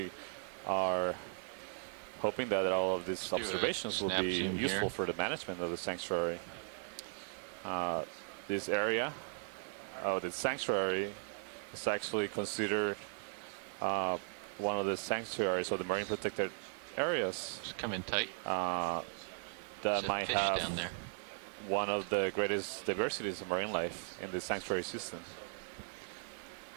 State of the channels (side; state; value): left; silent; digital silence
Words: are hoping that all of these observations will be useful for the management of the sanctuary. This area of the sanctuary is actually considered one of the sanctuaries or the marine protected areas. Just come in tight. That might have one of the greatest diversities of marine life in the sanctuary system.